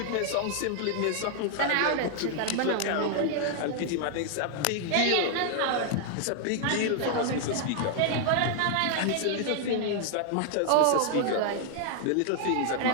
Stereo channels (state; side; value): different; both; correlation 0.00